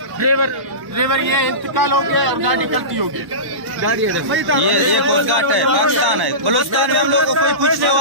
ये इंतकाल हो गया और गाड़ी कल्टी हो गई। ये कोस्ट गार्ड है, पाकिस्तान है। बलूचिस्तान में हम लोग को कोई पूछने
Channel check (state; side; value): late; left; 1.1 ms